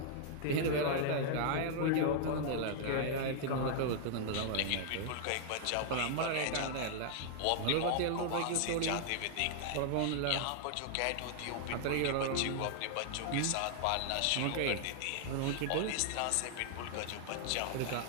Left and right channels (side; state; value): both; different; correlation -0.01